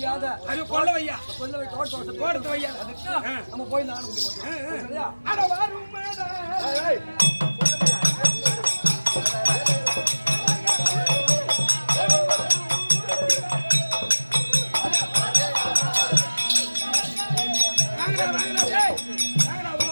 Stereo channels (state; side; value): inverted; both; correlation -1.00